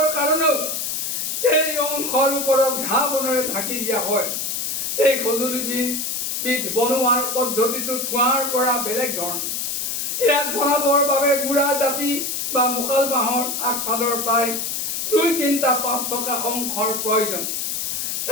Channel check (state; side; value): noise; left; hiss, 2 dB below the sound